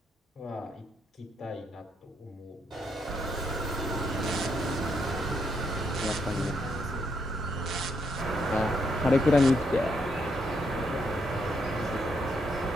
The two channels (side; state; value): both; normal; correlation 0.77